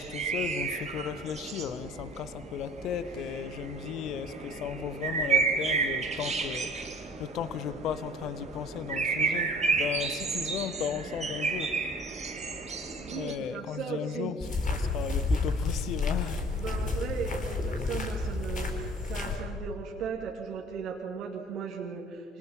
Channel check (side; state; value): both; normal; correlation 0.48